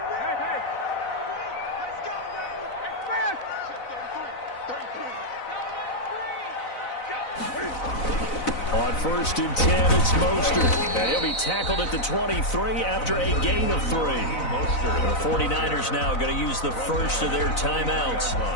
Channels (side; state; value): right; late; 4.0 ms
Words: On 1st and 10, it's Mostert. And he'll be tackled at the 23 after a gain of 3. The 49ers now going to use the first of their timeouts